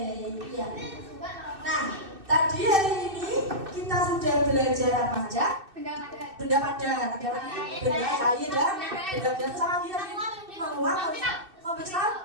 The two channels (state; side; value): late; left; 2.6 ms